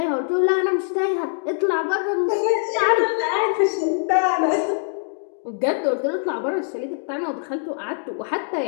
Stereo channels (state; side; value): silent; right; digital silence